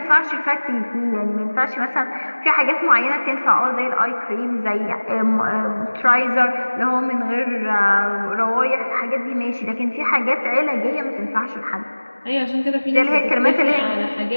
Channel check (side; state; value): both; inverted; correlation -1.00